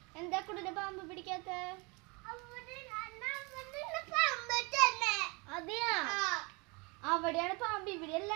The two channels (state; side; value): quieter; left; 28.9 dB